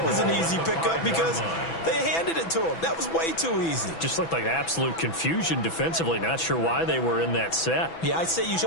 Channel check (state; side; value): late; right; 6.0 ms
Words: was an easy pickup because they handed it to him. That was way too easy. Just looked like absolute confusion defensively. Not sure why they were in that set. Yeah, I'd say you